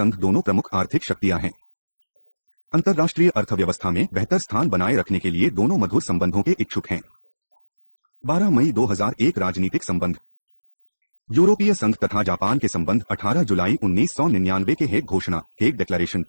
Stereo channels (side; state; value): both; inverted; correlation -1.00